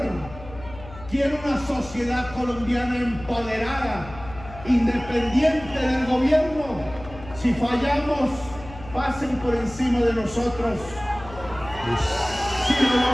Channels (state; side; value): noise; left; hum, 16 dB below the sound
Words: Quiere una sociedad colombiana empoderada, independiente del gobierno. Si fallamos, pasen por encima de nosotros. Si lo